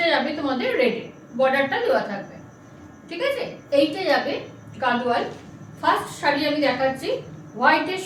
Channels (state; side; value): identical; both; correlation 1.00